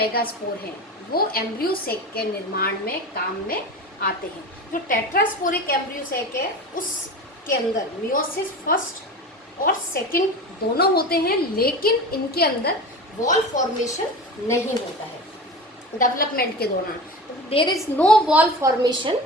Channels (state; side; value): normal; both; correlation 0.31